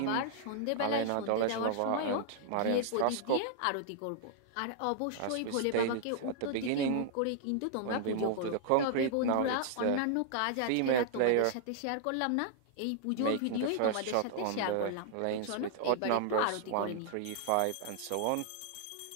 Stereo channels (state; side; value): different; both; correlation -0.01